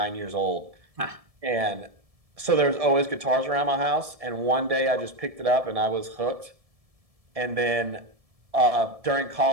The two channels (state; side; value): late; left; 1.7 ms